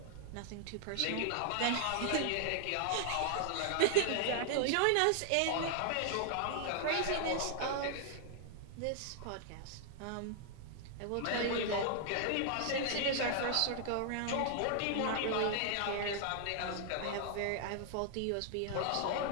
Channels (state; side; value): different; both; correlation 0.00